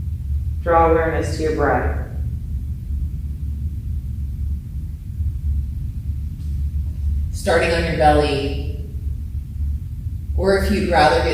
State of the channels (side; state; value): both; identical; correlation 1.00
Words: draw awareness to your breath. Starting on your belly, or if you'd rather